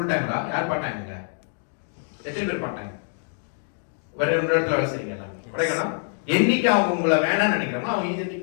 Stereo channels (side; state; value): right; silent; digital silence